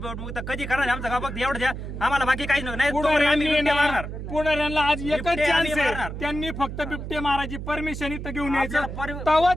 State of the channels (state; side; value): noise; right; hum, 7 dB below the sound